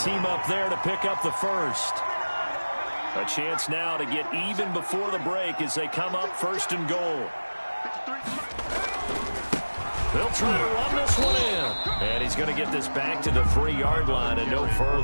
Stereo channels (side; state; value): both; inverted; correlation -1.00